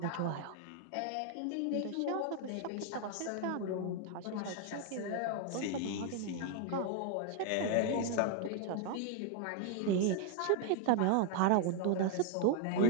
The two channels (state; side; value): different; both; correlation 0.00